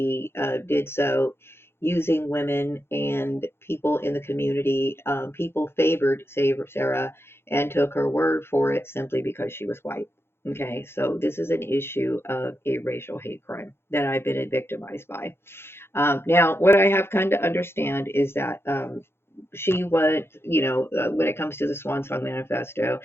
did so using women and people in the community. People favored Sarah and took her word for it simply because she was white. Okay, so this is an issue of a racial hate crime that I've been victimized by. Now, what I have come to understand is that she was, when it comes to the Swan Song Manifesto,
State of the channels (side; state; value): right; late; 0.12 ms